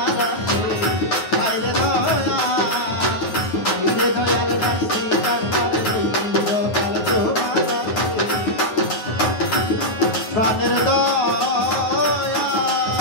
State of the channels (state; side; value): late; right; 9.4 ms